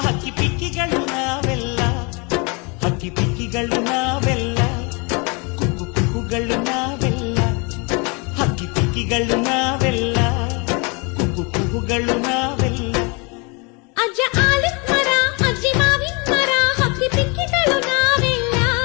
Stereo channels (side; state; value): right; quieter; 30.8 dB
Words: ಹಕ್ಕಿ ಪಿಕ್ಕಿಗಳು ನಾವೆಲ್ಲ, ಹಕ್ಕಿ ಪಿಕ್ಕಿಗಳು ನಾವೆಲ್ಲ, ಕುಕ್ಕು ಕುಕ್ಕುಗಳು ನಾವೆಲ್ಲ, ಹಕ್ಕಿ ಪಿಕ್ಕಿಗಳು ನಾವೆಲ್ಲ, ಕುಕ್ಕು ಕುಕ್ಕುಗಳು ನಾವೆಲ್ಲ. ಅಜ್ಜ ಆಲದ ಮರ ಅಜ್ಜಿ ಮಾವಿನ ಮರ ಹಕ್ಕಿ ಪಿಕ್ಕಿಗಳು ನಾವೆಲ್ಲ,